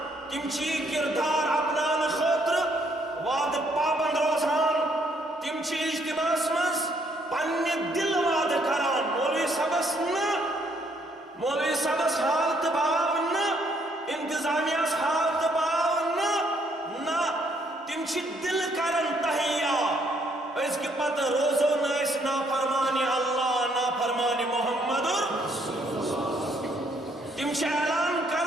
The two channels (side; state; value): both; normal; correlation 0.69